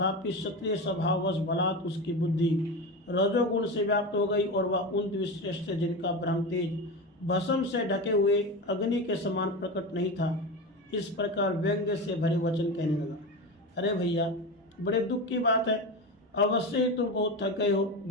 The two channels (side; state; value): both; normal; correlation 0.23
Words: क्षत्रिय स्वभाववश बलात् उसकी बुद्धि रजोगुण से व्याप्त हो गई और वह उन द्विश्रेष्ठ जिनका ब्रह्म तेज भस्म से ढके हुए अग्नि के समान प्रकट नहीं था, इस प्रकार व्यंग्य से भरे वचन कहने लगा, अरे भैया, बड़े दुख की बात है, अवश्य ही तुम बहुत थक गए हो।